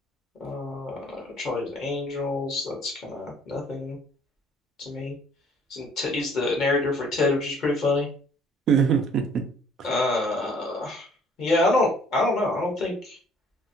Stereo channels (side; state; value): both; normal; correlation 0.57